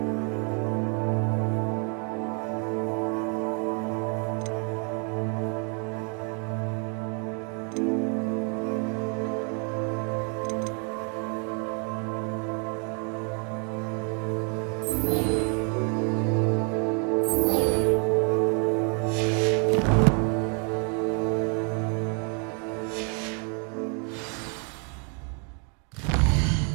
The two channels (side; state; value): left; quieter; 38.1 dB